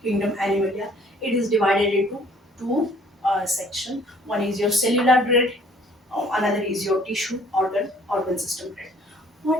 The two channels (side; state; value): both; normal; correlation 0.57